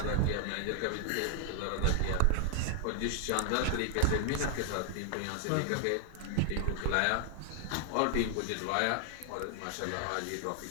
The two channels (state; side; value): different; both; correlation 0.00